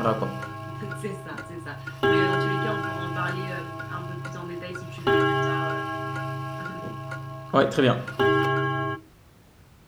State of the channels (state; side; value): identical; both; correlation 1.00